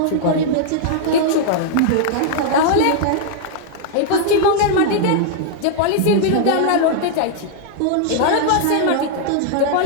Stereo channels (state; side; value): different; both; correlation -0.01